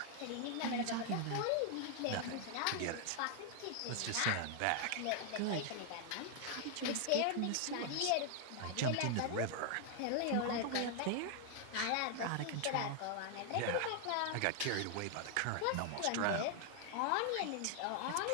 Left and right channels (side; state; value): both; different; correlation 0.00